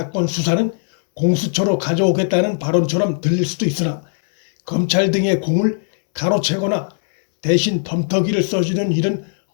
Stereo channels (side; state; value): right; silent; digital silence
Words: 수사는 공수처로 가져오겠다는 발언처럼 들릴 수도 있으나, 검찰 등의 공을 가로채거나 대신 덤터기를 써주는 일은